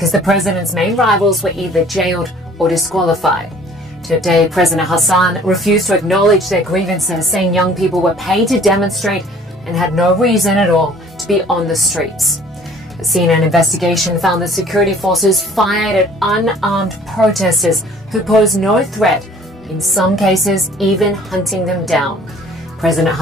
the president's main rivals were either jailed or disqualified. Today, President Hassan refused to acknowledge their grievances, saying young people were paid to demonstrate and had no reason at all to be on the streets. A CNN investigation found that security forces fired at unarmed protesters who posed no threat, in some cases even hunting them down. President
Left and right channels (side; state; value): both; normal; correlation 0.53